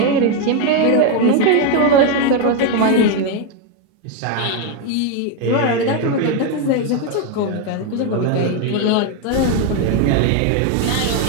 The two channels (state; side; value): different; both; correlation 0.02